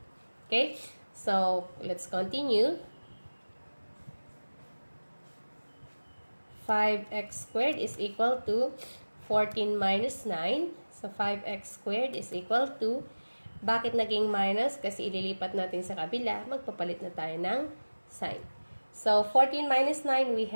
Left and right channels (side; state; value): both; inverted; correlation -1.00